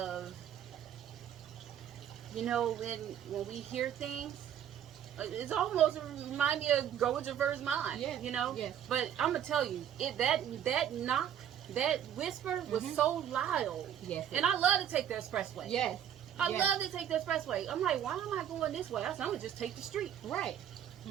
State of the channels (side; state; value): left; quieter; 9.8 dB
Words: You know, when we hear things, it's almost remind me of go with your first mind. Yeah. You know. Yes. But I'm gonna tell you, that knock, that whisper was so loud. Yes. And I love to take the expressway. Yes. I love to take the expressway. I'm like, why am I going this way? I'm gonna just take the street. Right.